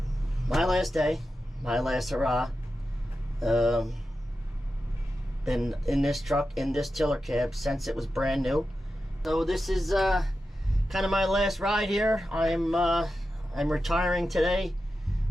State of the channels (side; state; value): both; normal; correlation 0.91